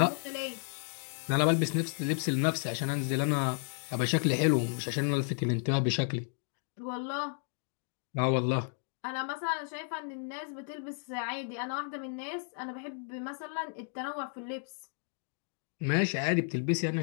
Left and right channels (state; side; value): silent; right; 56 dB below the other